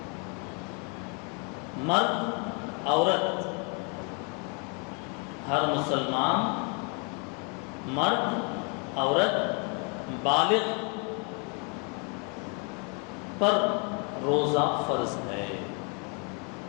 مرد عورت، ہر مسلمان مرد عورت بالغ پر روزہ فرض ہے۔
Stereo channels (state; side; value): quieter; right; 35.7 dB